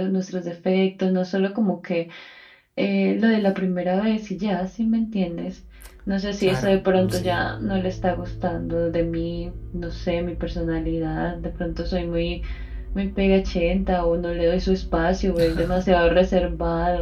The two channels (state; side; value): identical; both; correlation 1.00